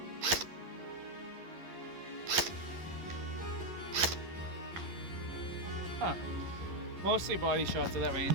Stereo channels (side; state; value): left; late; 11 ms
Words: Huh. Mostly body shots at that